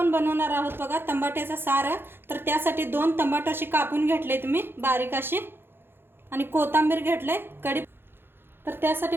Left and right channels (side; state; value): left; late; 0.10 ms